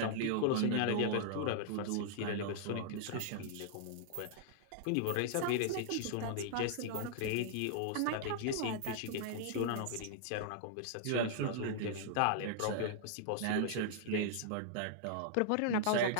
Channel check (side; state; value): both; different; correlation -0.01